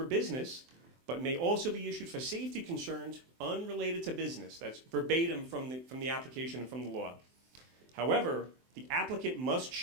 business, but may also be issued for safety concerns unrelated to business. That's verbatim from the application and from the law. However, the applicant must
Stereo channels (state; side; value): late; left; 23 ms